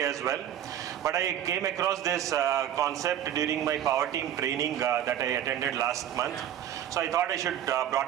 as well. But I came across this concept during my power team training that I attended last month. So I thought I should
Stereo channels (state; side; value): quieter; left; 10.7 dB